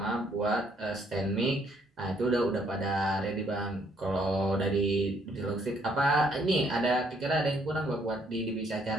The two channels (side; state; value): both; normal; correlation 0.68